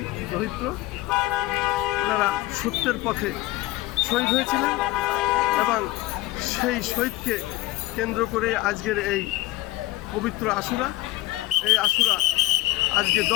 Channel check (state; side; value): quieter; right; 18.1 dB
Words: দরিদ্র, ওনারা সত্যের পথে শহীদ হয়েছিলেন এবং সেই শহীদকে কেন্দ্র করে আজকের এই পবিত্র আশুরা। এই আশুরা আজকে